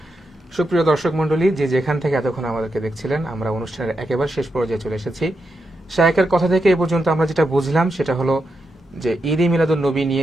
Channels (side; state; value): both; normal; correlation 0.85